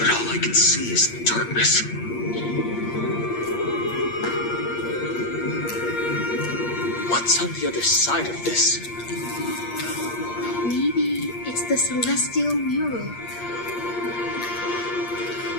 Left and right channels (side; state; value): right; late; 8.5 ms